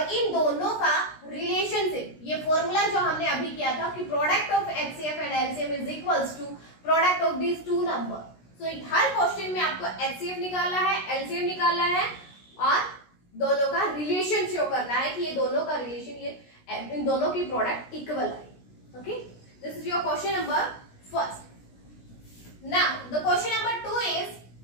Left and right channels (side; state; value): right; late; 16 ms